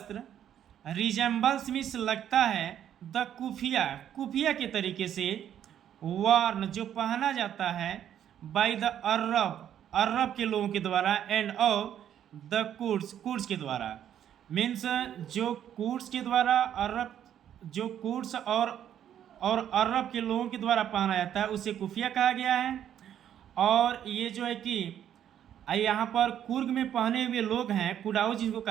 रिजेंबल्स मीन्स लगता है, द कुफिया के तरीके से, वार्न जो पहना जाता है, बाय द अरब के लोगों के द्वारा, एंड और द कुर्ड्स के द्वारा। मीन्स जो कुर्ड्स के द्वारा जो कुर्ड्स और अरब के लोगों के द्वारा पहना जाता है उसे कुफिया कहा गया है। और ये जो है कि यहाँ पर कुर्ग में पहने हुए लोग हैं कुडाउस जिनको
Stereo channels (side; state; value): left; quieter; 10.1 dB